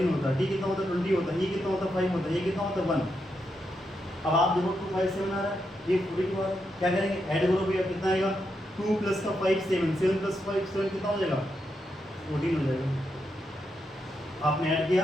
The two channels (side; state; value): both; normal; correlation 0.83